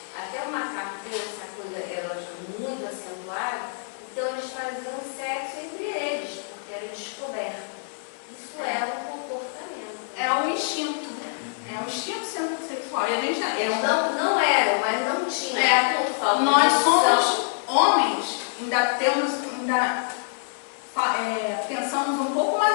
Até o macaco tem essa coisa erótica muito acentuada, então eles faziam sexo entre eles, porque era descoberto. Isso é um comportamento. É um instinto. É um instinto sexual. E a gente eles não eram, mas não tinham. Nós somos homens, pensamos um pouco, mas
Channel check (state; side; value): silent; right; digital silence